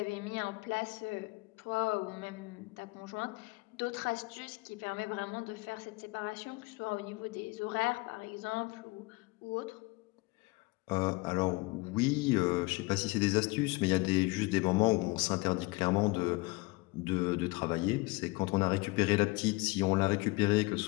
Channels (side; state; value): right; quieter; 24.4 dB